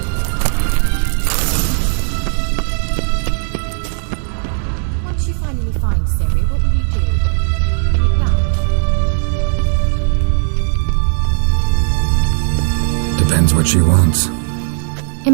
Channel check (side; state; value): left; silent; 64 dB below the other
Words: What she wants.